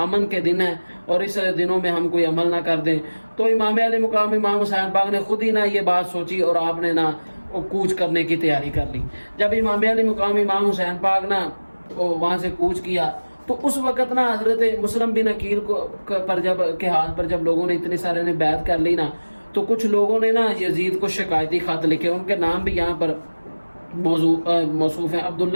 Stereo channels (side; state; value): both; inverted; correlation -1.00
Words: امن کے دن ہے اور اس دنوں میں ہم کوئی عمل نہ کر دیں. تو امام علی مقام امام حسین پاک نے خود ہی نہ یہ بات سوچی اور آپ نے نہ کوچ کرنے کی تیاری کر لی. جب امام علی مقام امام حسین پاک نہ وہاں سے کوچ کیا تو اس وقت نا حضرت مسلم بن عقیل کے ہاتھ پر جب لوگوں نے اتنے سارے نے بیعت کر لی نا، تو کچھ لوگوں نے نا یزید کو شکایتی خط لکھے. ان کے نام بھی یہاں پر موصوف ہیں.